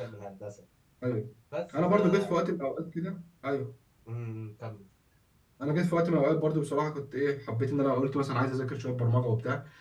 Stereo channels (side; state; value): both; identical; correlation 1.00